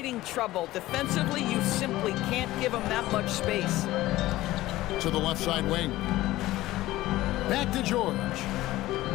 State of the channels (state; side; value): quieter; right; 16.7 dB